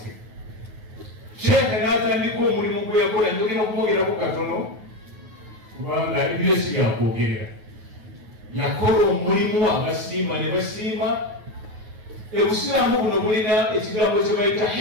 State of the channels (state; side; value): late; left; 9.4 ms